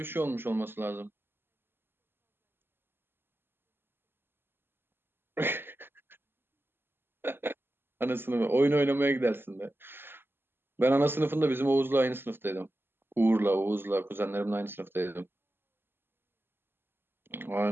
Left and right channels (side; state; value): left; late; 0.10 ms